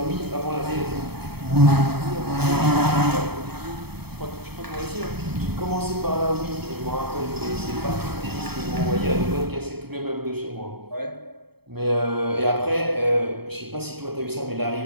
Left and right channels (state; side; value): late; left; 0.97 ms